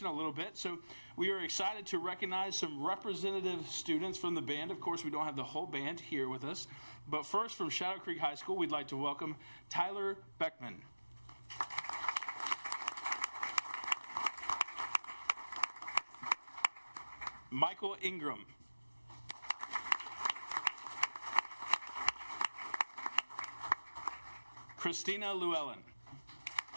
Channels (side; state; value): both; inverted; correlation -1.00